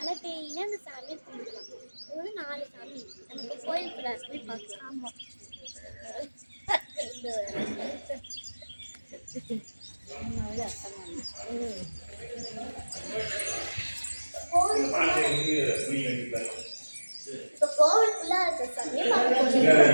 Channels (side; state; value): both; inverted; correlation -1.00